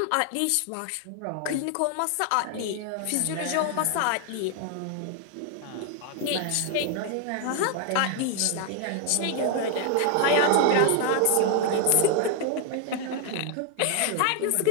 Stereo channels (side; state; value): both; different; correlation 0.00